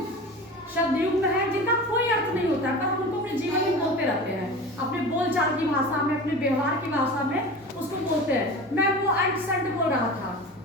शब्द युग में है जिनका कोई अर्थ नहीं होता है, पर हम उनको अपने जीवन में बोलते रहते हैं, अपने बोलचाल की भाषा में, अपने व्यवहार की भाषा में उसको बोलते हैं। मैं वो अंट संट बोल रहा था,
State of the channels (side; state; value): both; normal; correlation 0.33